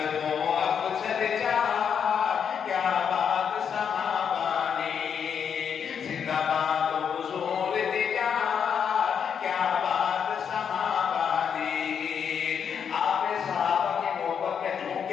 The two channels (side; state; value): right; quieter; 7.4 dB